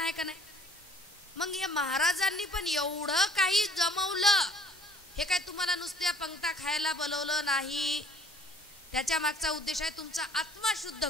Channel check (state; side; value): normal; both; correlation 0.54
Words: आहे का नाही? मग या महाराजांनी पण एवढं काही जमवलं. हे काय तुम्हाला नुसत्या पंक्ता खायला बोलवलं नाही. त्याच्या मागचा उद्देश आहे तुमचा आत्मा शुद्ध